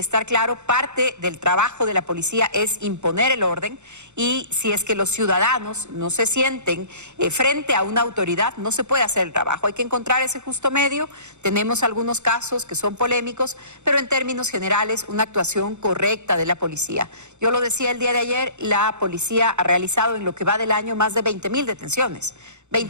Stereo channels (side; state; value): left; late; 0.83 ms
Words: claro. Parte del trabajo de la policía es imponer el orden y si es que los ciudadanos no se sienten frente a una autoridad, no se puede hacer el trabajo. Hay que encontrar ese justo medio. Tenemos algunos casos que son polémicos, pero en términos generales, una actuación correcta de la policía. Yo lo decía el día de ayer, la policía ha realizado en lo que va del año más de 20.000 detenciones.